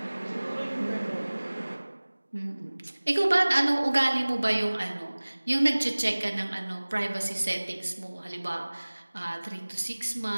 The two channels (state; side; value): inverted; both; correlation -1.00